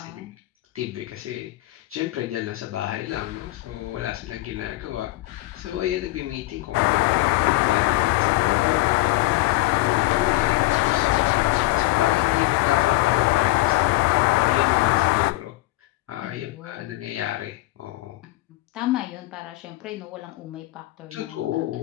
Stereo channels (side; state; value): right; quieter; 19.4 dB